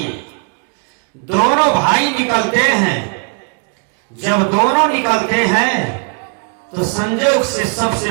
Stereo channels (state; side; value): quieter; left; 39.0 dB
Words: दोनों भाई निकलते हैं। जब दोनों निकलते हैं तो संजोग से सबसे